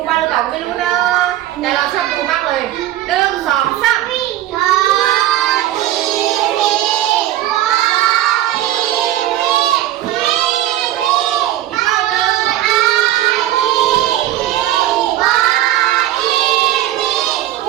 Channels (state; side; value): quieter; left; 13.7 dB